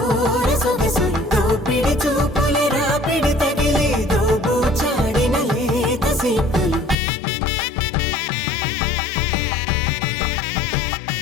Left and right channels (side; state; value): right; drops out; at 7.0 s